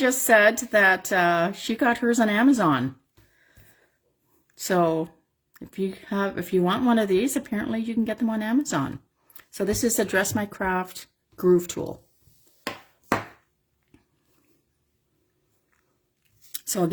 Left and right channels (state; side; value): identical; both; correlation 1.00